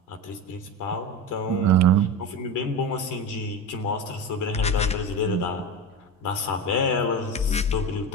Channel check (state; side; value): normal; both; correlation 0.22